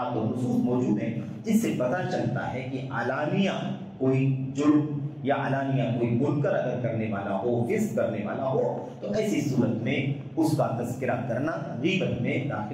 اور نصوص موجود ہیں جس سے پتہ چلتا ہے کہ علانیہ کوئی جرم یا علانیہ کوئی منکر اگر کرنے والا ہو، فسق کرنے والا ہو، تو ایسی صورت میں اس کا تذکرہ کرنا غیبت میں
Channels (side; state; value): both; identical; correlation 1.00